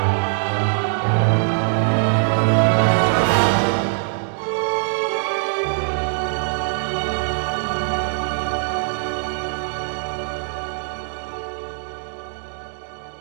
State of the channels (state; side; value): silent; left; digital silence